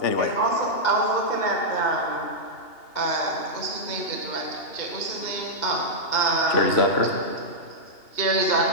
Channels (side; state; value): right; late; 2.8 ms